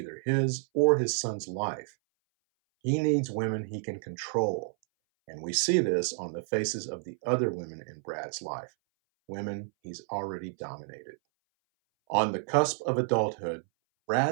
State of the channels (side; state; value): left; silent; 58 dB below the other